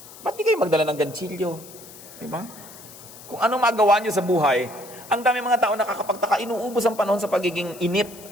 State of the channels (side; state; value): left; noise; hiss, 18 dB below the sound